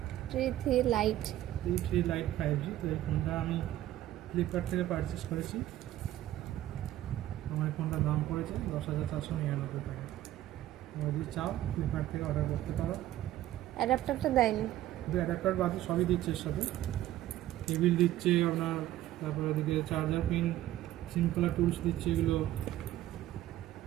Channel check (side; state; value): left; quieter; 13.9 dB